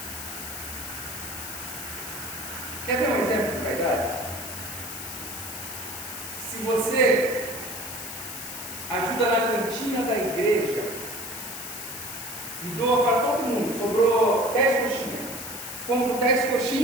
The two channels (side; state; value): left; noise; hiss, 8 dB below the sound